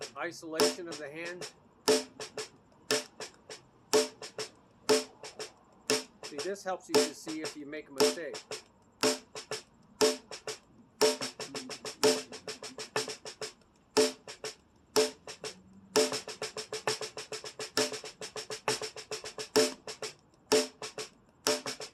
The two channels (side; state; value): both; identical; correlation 1.00